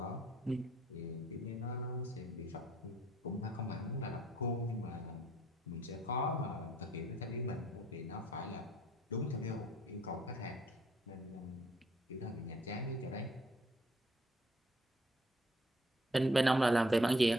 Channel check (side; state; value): both; normal; correlation 0.64